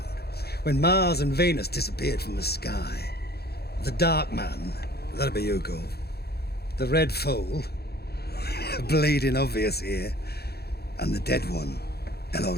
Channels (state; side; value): late; right; 0.46 ms